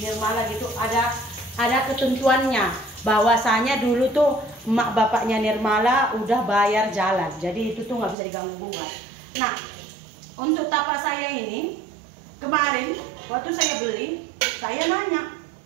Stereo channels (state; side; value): drops out; left; at 8.2 s